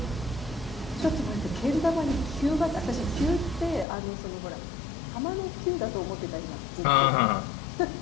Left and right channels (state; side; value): drops out; right; at 3.9 s